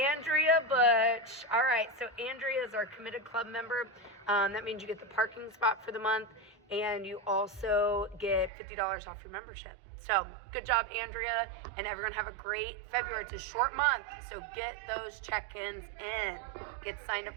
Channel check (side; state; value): left; drops out; at 8.5 s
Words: Butch. All right, so Andrea is our Committed Club member. That means you get the parking spot for the month, and you also get $50 off your membership. So good job, Andrea, and everyone have a great February. It's a short month, so get those check-ins in. Get signed